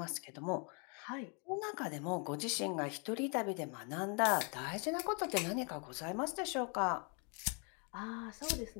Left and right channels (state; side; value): quieter; right; 36.6 dB